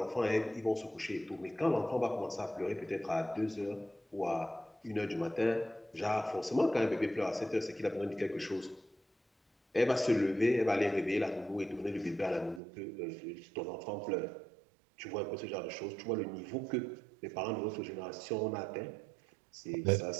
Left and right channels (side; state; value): left; drops out; at 12.6 s